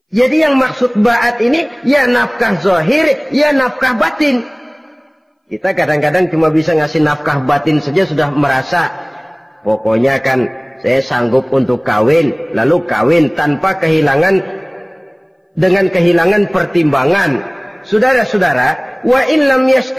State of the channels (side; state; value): both; identical; correlation 1.00